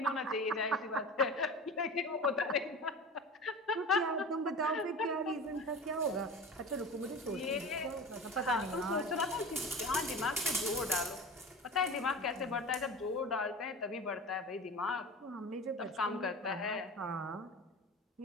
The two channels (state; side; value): normal; both; correlation 0.33